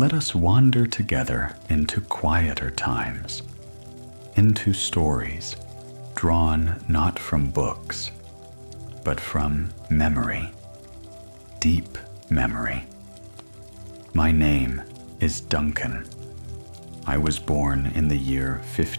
us wander together into quieter times, into stories drawn not from books, but from memory, deep memory. My name is Duncan. I was born in the year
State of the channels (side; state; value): both; inverted; correlation -1.00